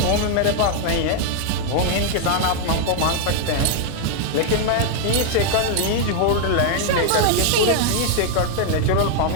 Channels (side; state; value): both; different; correlation 0.00